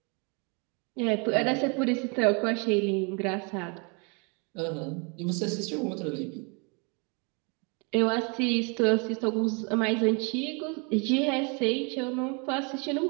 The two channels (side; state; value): left; quieter; 33.5 dB